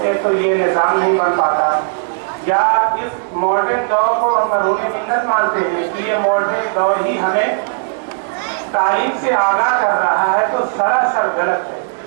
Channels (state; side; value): silent; left; digital silence